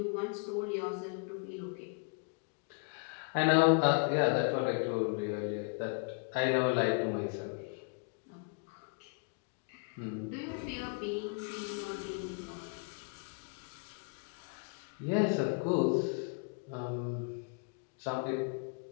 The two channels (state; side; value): quieter; right; 39.2 dB